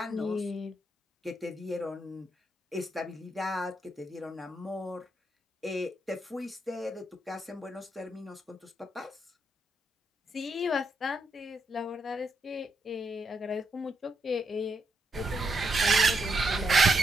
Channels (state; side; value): normal; both; correlation 0.80